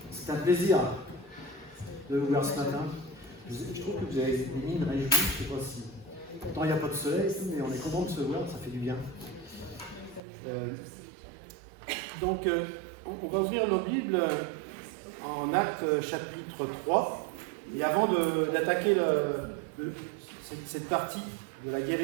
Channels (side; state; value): left; drops out; at 10.2 s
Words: c'est un plaisir de vous voir ce matin. Je trouve que vous avez des mines réjouies, je ne sais pas si... Pourtant, il n'y a pas de soleil, mais on est content de se voir, ça fait du bien. Donc, on va ouvrir nos Bibles en Actes chapitre 3. Et avant d'attaquer cette partie de la